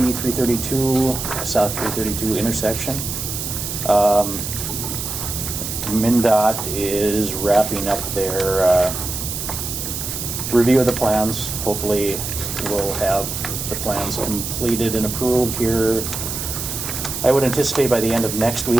332, South 332 intersection. MnDOT is wrapping up their review of the plans. Hopefully we'll have the plans completed and approved here, I would anticipate by the end of next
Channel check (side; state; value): right; noise; hiss, 5 dB below the sound